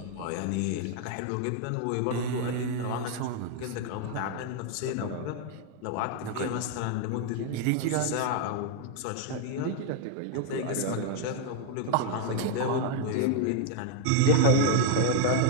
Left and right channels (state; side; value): different; both; correlation 0.00